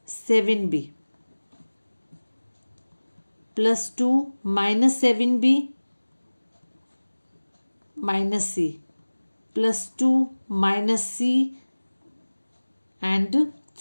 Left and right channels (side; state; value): both; inverted; correlation -1.00